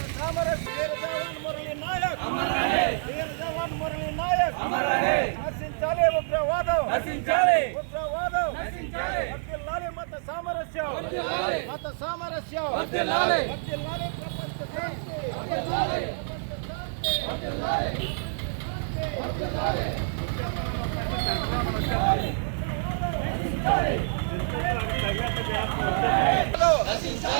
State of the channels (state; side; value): silent; left; digital silence